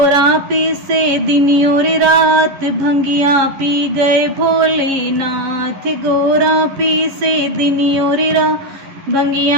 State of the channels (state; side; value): late; left; 11 ms